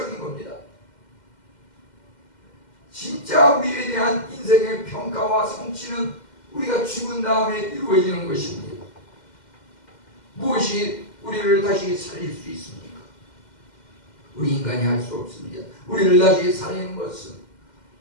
겁니다. 진짜 우리에 대한 인생의 평가와 성취는 우리가 죽은 다음에 이루어지는 것입니다. 무엇이 우리를 다시 살릴 수 있습니까? 우리 인간이 할 수 없습니다. 우리를 다시 살리는 것은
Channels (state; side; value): late; right; 2.1 ms